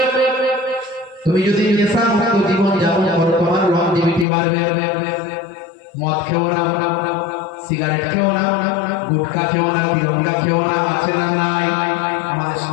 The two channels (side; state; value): right; drops out; at 4.2 s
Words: তুমি যদি নেশামুক্ত জীবন যাপন করো তোমার লংজিভিটি বাড়বে। মদ খেও না, সিগারেট খেও না, গুটখা খেও না, তিরঙ্গা খেও না, আছে না নাই? আমাদের